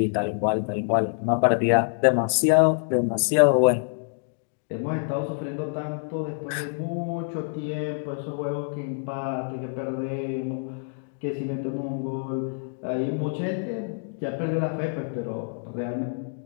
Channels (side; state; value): right; silent; digital silence